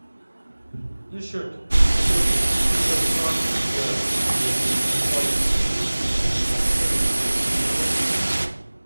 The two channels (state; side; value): inverted; both; correlation -1.00